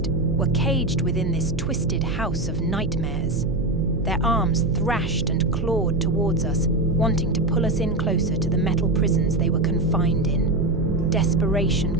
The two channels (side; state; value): right; noise; hum, 6 dB below the sound